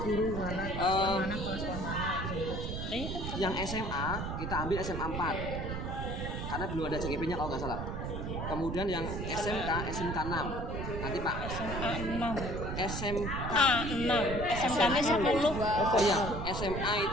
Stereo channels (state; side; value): noise; right; rumble, 4 dB below the sound